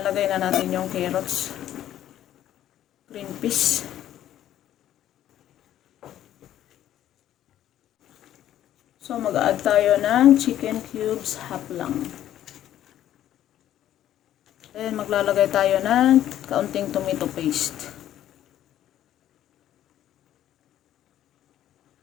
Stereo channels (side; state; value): right; quieter; 11.9 dB